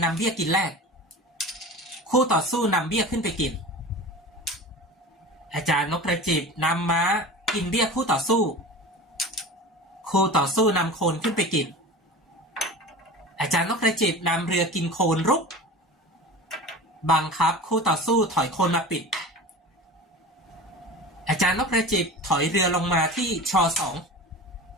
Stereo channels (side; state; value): both; normal; correlation 0.34